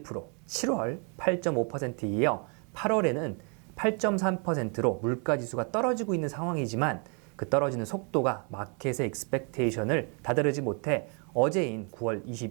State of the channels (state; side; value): quieter; left; 36.8 dB